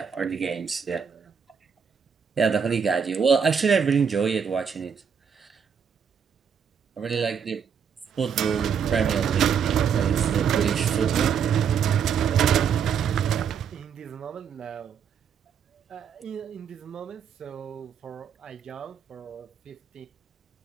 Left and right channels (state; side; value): quieter; left; 7.1 dB